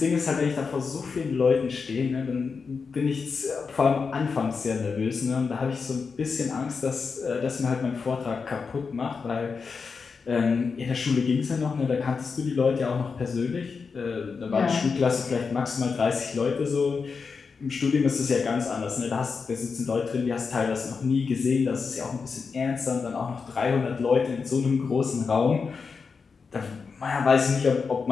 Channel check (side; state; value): right; quieter; 5.2 dB